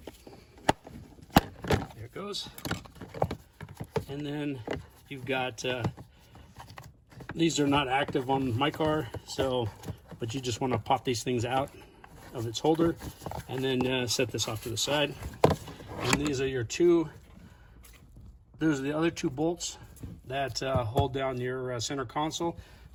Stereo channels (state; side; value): identical; both; correlation 1.00